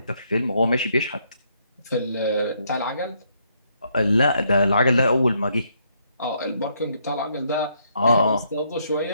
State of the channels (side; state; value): both; inverted; correlation -0.73